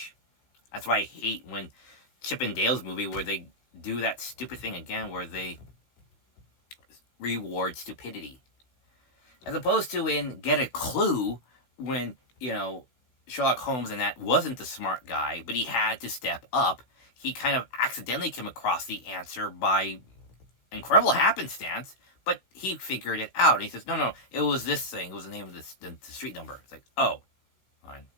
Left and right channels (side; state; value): right; late; 16 ms